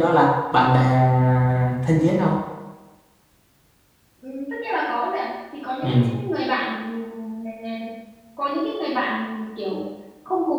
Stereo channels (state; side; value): identical; both; correlation 1.00